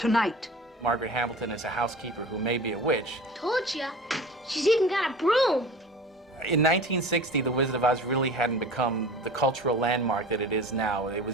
Margaret Hamilton is a housekeeper who may be a witch. Told ya. She's even got a broom. In 1960, The Wizard of Oz really hadn't become the cultural landmark that it is now. It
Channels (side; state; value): both; normal; correlation 0.37